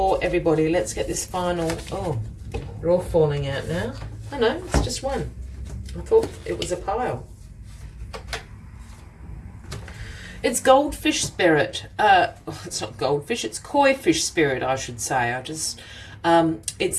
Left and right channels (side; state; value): both; identical; correlation 1.00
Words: everybody. Let's get this final... Oh, they're all falling out now. Oh no, it's just one. I thought it was a pile. It's goldfish spirit. It's not goldfish, it's koi fish spirit, I should say.